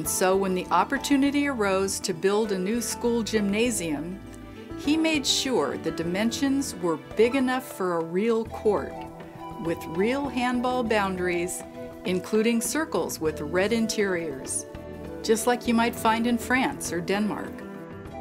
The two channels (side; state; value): both; identical; correlation 1.00